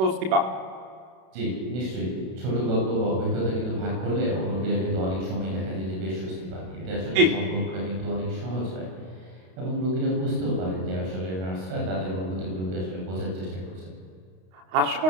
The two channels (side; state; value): left; late; 32 ms